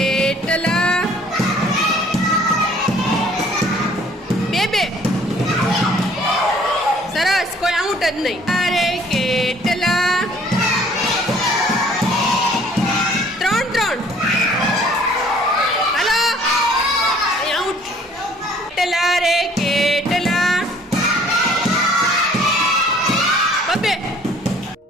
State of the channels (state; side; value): normal; both; correlation 0.57